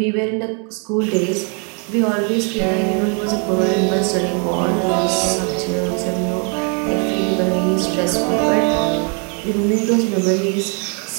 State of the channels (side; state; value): left; quieter; 38.0 dB